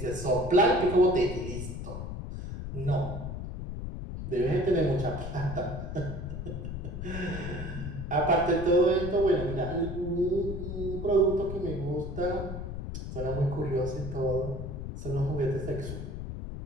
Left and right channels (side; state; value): left; noise; rumble, 6 dB below the sound